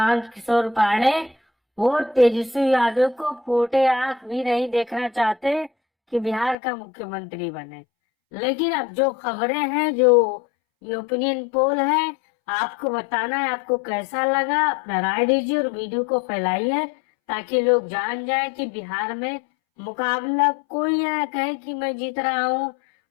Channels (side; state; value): right; drops out; at 6.6 s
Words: किशोर पांडे, वो तेजस्वी यादव को फूटे आंख भी नहीं देखना चाहते कि बिहार का मुख्यमंत्री बने। लेकिन अब जो खबरें हैं, जो ये ओपिनियन पोल है, आपको बताना है आपको कैसा लगा। अपना राय दीजिए और वीडियो को फैलाइए ताकि लोग जान जाए कि बिहार में मुकाबला, कोई ये ना कहे कि मैं जीत रहा हूँ,